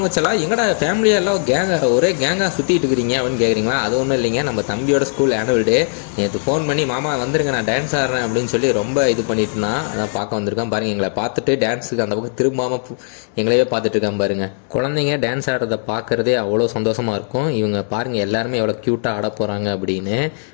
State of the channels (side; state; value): right; silent; 65 dB below the other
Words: செல்லா. எங்கடா ஃபேமிலியெல்லாம் ஒரே கேங்காக சுற்றிட்டு இருக்கிறீங்க அப்படின்னு கேட்குறீங்களா? அது ஒன்றும் இல்லைங்க, நம்ம தம்பியோட ஸ்கூல் ஆனுவல் டே. நேற்று ஃபோன் பண்ணி மாமா வந்துருங்க, நான் டான்ஸ் ஆடுறேன் அப்படின்னு சொல்லி ரொம்ப இது பண்ணிட்டு இருந்தான். அதான் பார்க்க வந்திருக்கான் பாருங்கள். எங்களை பார்த்துட்டு டான்ஸுக்கு அந்த பக்கம் திரும்பாமல் எங்களையே பார்த்துட்டு இருக்கான் பாருங்க. குழந்தைங்க டான்ஸ் ஆடுறதை பார்க்குறதே அவ்வளோ சந்தோஷமாக இருக்கும். இவங்க பாருங்கள் எல்லாருமே எவ்வளோ க்யூட்டாக ஆட போகிறாங்க அப்படின்னு